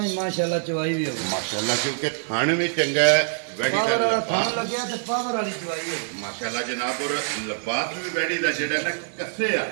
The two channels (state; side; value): silent; left; digital silence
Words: ਹੀ ਮਾਸ਼ਾਅੱਲਾ ਚਵਾਈ ਵੀ ਹੋਵੇ ਮਾਸ਼ਾਅੱਲਾ ਕਿਉਂਕਿ ਥਣ ਵੀ ਚੰਗਾ ਹੈ ਵੈੜੀ ਦਾ ਥਣ ਲੱਗਿਆ ਤੇ ਪਾਵਰ ਵਾਲੀ ਚਵਾਈ ਹੋਵੇ ਮਾਸ਼ਾਅੱਲਾ ਜਨਾਬ ਔਰ ਲਬਾਸ ਵੀ ਵੈੜੀ ਦਾ ਜਿਹੜਾ ਨਾ ਕੱਸੇ ਆ